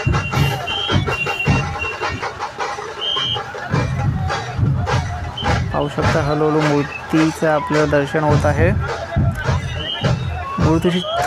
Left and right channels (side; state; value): both; identical; correlation 1.00